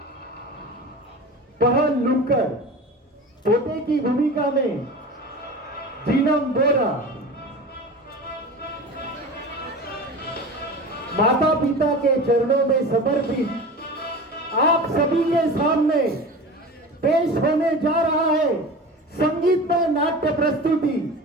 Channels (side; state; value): both; normal; correlation 0.33